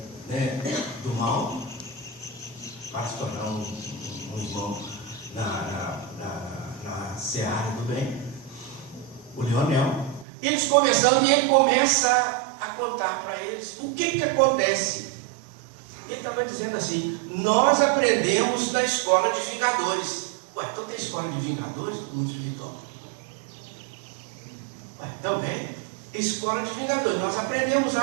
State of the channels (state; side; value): drops out; left; at 10.2 s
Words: né, do mal, para se tornar um irmão na seara do bem, o Leonel. Eles conversando e ele começa a contar para eles o que acontece. Ele estava dizendo assim: nós aprendemos da escola de vingadores. Ué, então tem escola de vingadores no mundo espiritual? Ué, também, escola de vingadores, nós aprendemos